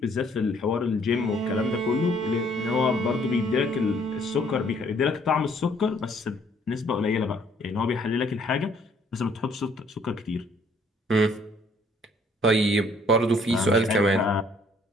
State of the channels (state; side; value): normal; both; correlation 0.62